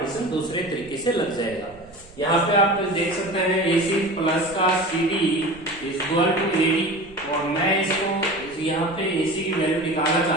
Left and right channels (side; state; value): right; noise; rumble, 24 dB below the sound